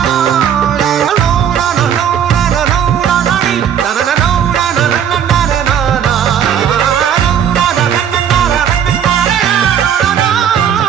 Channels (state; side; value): quieter; left; 8.7 dB